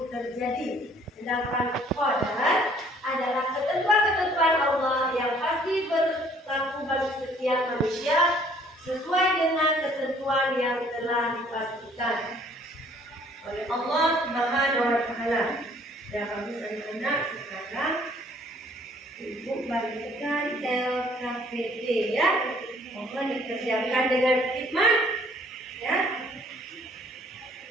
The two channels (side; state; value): both; normal; correlation 0.59